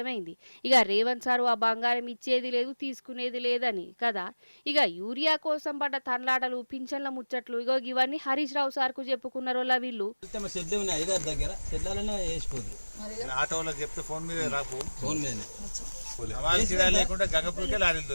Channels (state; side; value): inverted; both; correlation -1.00